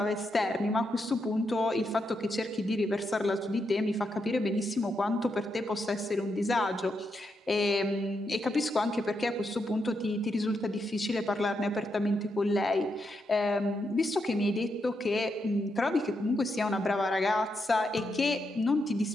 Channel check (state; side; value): normal; both; correlation 0.82